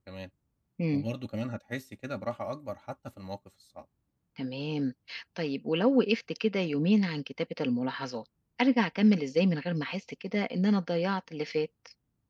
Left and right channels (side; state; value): both; identical; correlation 1.00